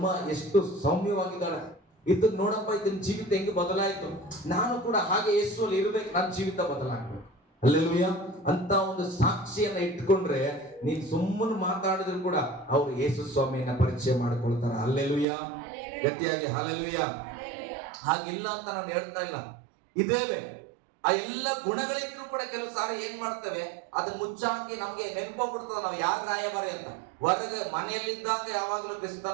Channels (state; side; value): drops out; left; at 15.2 s